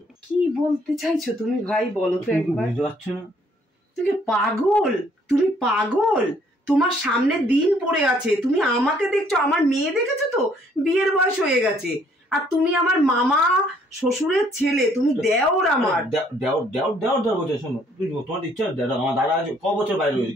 কি বলতে চাইছো তুমি ভাই, বলো তো একবার। বুঝতে পারছো না? তুমি পাগল, তুমি পাগল। তোমার সামনে দিন পড়ে আছে, তুমি আমাকে দেখছো, আমার মেয়ে দেখেছো তো? বিয়ের বয়স হয়ে গেছে, আর তুমি আমার মামা শ্বশুরের ছেলে, তুমি দেওর আমার। দেওর বলছে। শোনো, তোমার ইচ্ছা আমার দাদা ক বছর বাইরে রয়েছে,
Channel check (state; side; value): normal; both; correlation 0.64